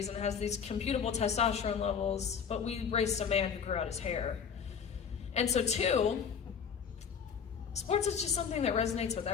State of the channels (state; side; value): quieter; right; 6.9 dB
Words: and has these computable testosterone levels, but we raised a man who grew out his hair. And so 2, sports is just something that resonates with